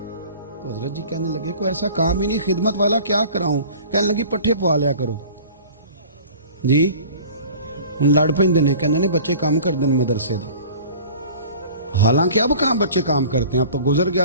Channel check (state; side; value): inverted; both; correlation -0.44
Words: تو حضرت جی کہنے لگے کوئی ایسا کام ہی نہیں، خدمت والا کیا کراؤں؟ کہنے لگی پٹھے پوا لیا کرو جی، ہن لڑ پیندے نے، کہنے نے بچے کام کر دیں مدرسے دا، حالانکہ اب کہاں بچے کام کرتے ہیں، اب تو گزر